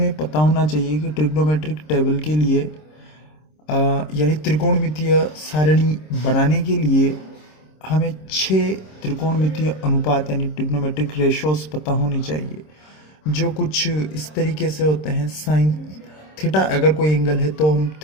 पता होना चाहिए कि ट्रिग्नोमेट्रिक टेबल के लिए यानी त्रिकोणमितीय सारणी बनाने के लिए हमें 6 त्रिकोणमितीय अनुपात यानी ट्रिग्नोमेट्रिक रेशोस पता होनी चाहिए, जो कुछ इस तरीके से होते हैं। साइन थीटा अगर कोई एंगल है तो हम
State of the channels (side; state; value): right; late; 26 ms